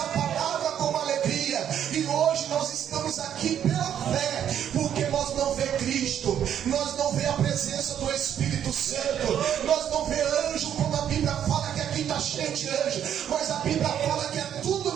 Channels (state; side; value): quieter; left; 9.6 dB